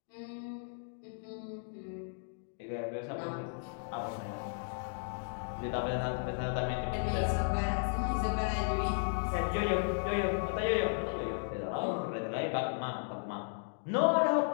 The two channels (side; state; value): right; silent; digital silence